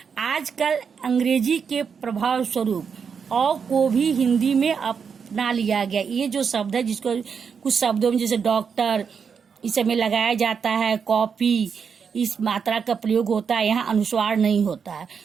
आजकल अंग्रेजी के प्रभाव स्वरूप अ को भी हिंदी में अपना लिया गया। ये जो शब्द है, जिसको कुछ शब्दों में जैसे डॉक्टर इस में लगाया जाता है, कॉपी, इस मात्रा का प्रयोग होता है, यहाँ अनुस्वार नहीं होता है।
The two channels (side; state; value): left; quieter; 6.4 dB